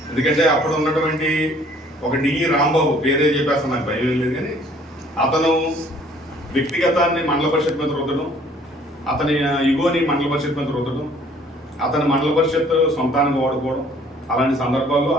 ఎందుకంటే అప్పుడు ఉన్నటువంటి ఒక డిఈ రాంబాబు, పేరే చెప్పేస్తాను, నాకు భయం లేదు, కానీ అతను వ్యక్తిగతాన్ని మండల పరిషత్ మీద రుద్దడం, అతని ఇగోని మండల పరిషత్ మీద రుద్దడం, అతని మండల పరిషత్ సొంతానికి వాడుకోవడం, అలాంటి సందర్భాల్లో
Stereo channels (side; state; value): both; normal; correlation 0.57